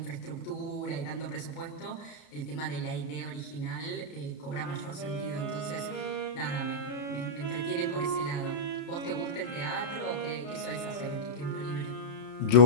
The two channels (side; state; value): right; late; 32 ms